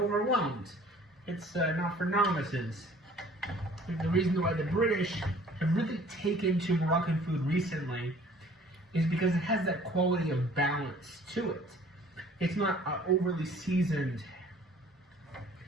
It's not for novices. The reason why the British have really taken to Moroccan food recently is because it has that quality of balance to it. It's not overly seasoned,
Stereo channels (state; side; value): normal; both; correlation 0.53